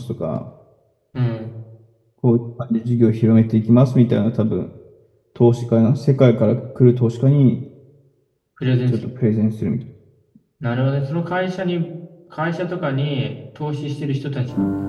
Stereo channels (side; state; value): both; identical; correlation 1.00